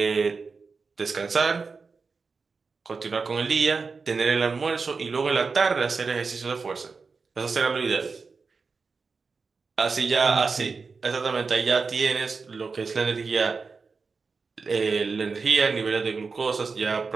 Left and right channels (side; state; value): left; quieter; 4.7 dB